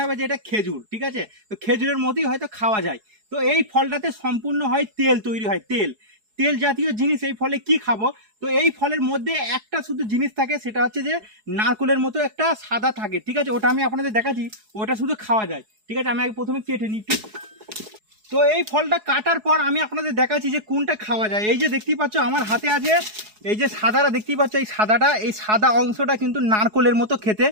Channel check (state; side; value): late; left; 4.7 ms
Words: হবে যে এটা খেজুর, ঠিক আছে, তো খেজুরের মতোই হয়তো খাওয়া যায়। তো এই ফলটাতে সম্পূর্ণ হয় তেল তৈরি হয়, তেল তেল জাতীয় জিনিস এই ফলে কি খাবো। তো এই ফলের মধ্যে একটা শুধু জিনিস থাকে, সেটা হচ্ছে যে নারকলের মতো একটা সাদা থাকে, ঠিক আছে, ওটা আমি আপনাদের দেখাচ্ছি, ওটা শুধু খাওয়া যায়, ঠিক আছে। আমি আগে প্রথমে কেটে নিই একটু। তো এই ফলটা কাটার পর আমি আপনাদের দেখাচ্ছি যে কোনটা খাওয়া যায়। এই যে দেখতেই পাচ্ছ আমার হাতে আছে এই যে সাদাটা দেখতেই পাচ্ছ, এই সাদাটা, এই সাদা অংশটা কিন্তু নারকলের মতো খেতে,